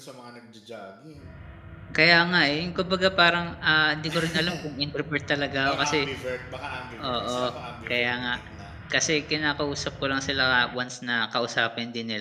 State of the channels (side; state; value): both; identical; correlation 1.00